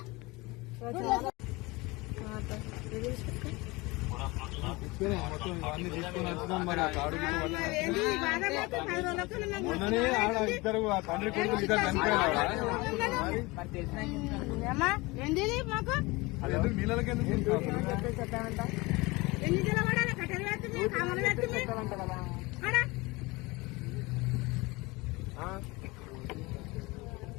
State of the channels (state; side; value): quieter; right; 23.3 dB